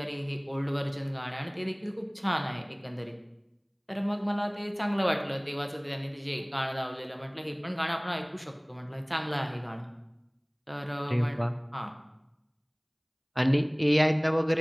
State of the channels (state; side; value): identical; both; correlation 1.00